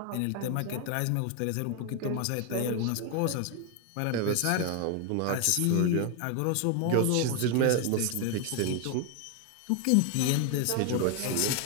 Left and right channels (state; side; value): different; both; correlation 0.01